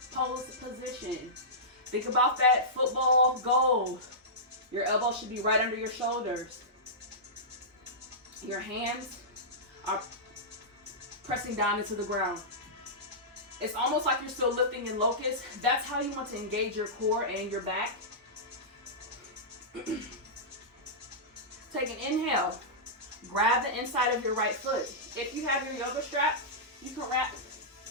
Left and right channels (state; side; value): normal; both; correlation -0.15